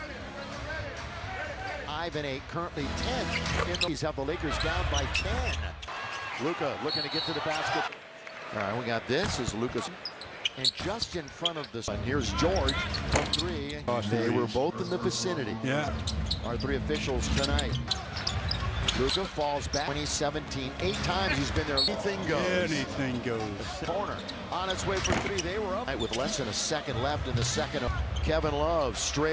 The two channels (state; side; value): identical; both; correlation 1.00